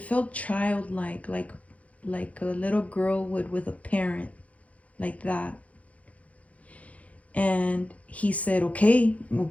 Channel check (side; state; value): right; late; 0.067 ms